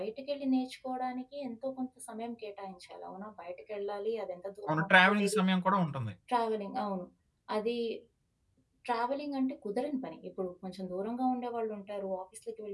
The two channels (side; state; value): both; identical; correlation 1.00